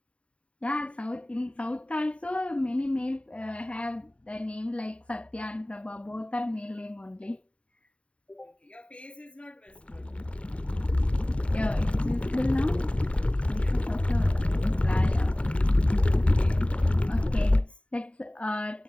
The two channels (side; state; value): right; late; 0.062 ms